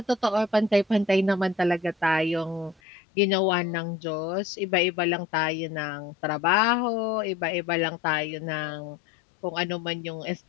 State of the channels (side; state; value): right; drops out; at 2.8 s